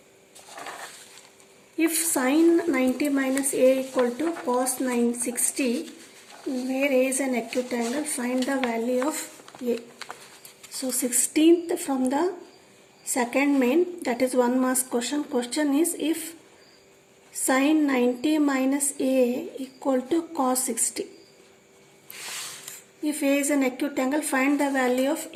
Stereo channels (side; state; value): both; identical; correlation 1.00